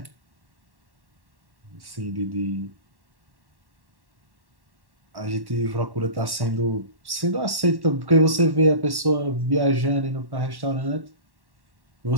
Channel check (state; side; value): late; left; 1.1 ms